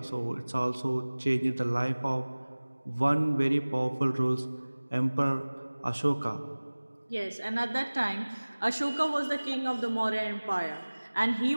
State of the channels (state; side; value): inverted; both; correlation -1.00